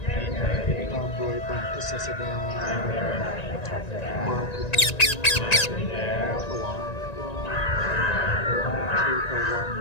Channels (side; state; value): right; late; 1.9 ms